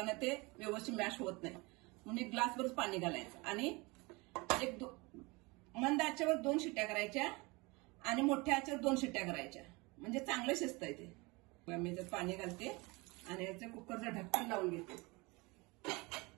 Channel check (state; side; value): quieter; left; 25.6 dB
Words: ते व्यवस्थित मॅश होत नाही, म्हणून 1 ग्लासवरच पाणी घालायचं. आणि मंद आचेवर 2 शिट्ट्या करायच्या आणि मोठ्या आचेवर 2 शिट्ट्या करायच्या, म्हणजे चांगलं शिजतंय ते. मी त्यात पाणी घालते आणि याचं कुकरचं ढक्कन लावून घेते.